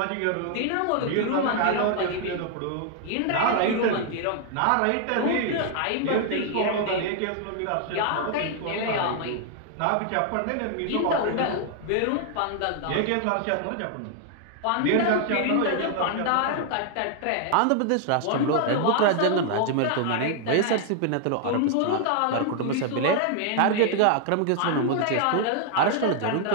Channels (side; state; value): both; different; correlation 0.00